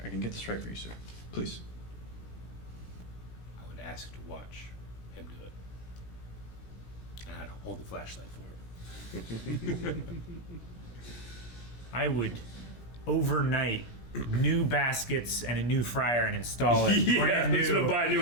I can get this right for you, sir. Please. I would ask to watch him do it. And I'd hold the flashlight for him. I would overnight new baskets and a new fryer and install it. Yeah, Brand that's what I new. buy a new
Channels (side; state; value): right; late; 17 ms